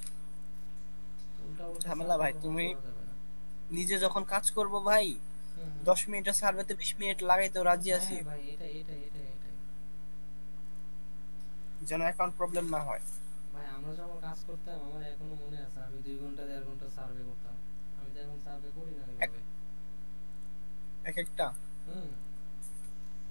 উল্টা উল্টা ঝামেলা ভাই, তুমি নিজে যখন কাজ করবো ভাই 10 মিনিটের সার্ভেতে 20 মিনিট লাগাইতেও রাজি আছি, হ্যাঁ ভাই এটাই যেন অ্যাকাউন্ট প্রবলেম না হয়। ভাই। আমরা যখন কাজ করতাম আমার এখনো মনে আছে, আমি 2 ঘন্টা 1.5 ঘন্টা সার্ভে করতাম। আমি তো এখন সার্ভে করি না ওইভাবে। এক একটা হুম,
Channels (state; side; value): inverted; both; correlation -1.00